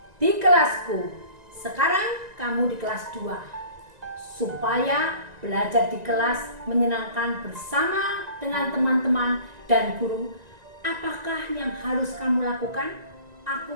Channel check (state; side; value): late; left; 1.9 ms